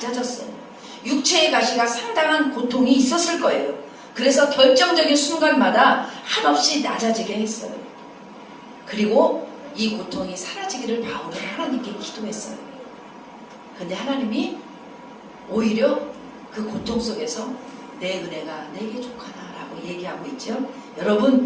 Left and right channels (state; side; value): identical; both; correlation 1.00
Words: 육체의 가시가 상당한 고통이 있었을 거예요. 그래서 결정적인 순간마다 한없이 낮아지게 했어요. 그리고 이 고통이 사라지기를 바울은 하나님께 기도했어요. 근데 하나님이 오히려 그 고통 속에서 내 은혜가 내게 족하다라고 얘기하고 있죠.